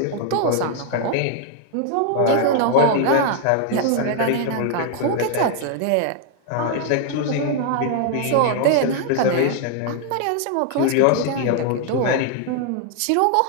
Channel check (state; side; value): different; both; correlation 0.00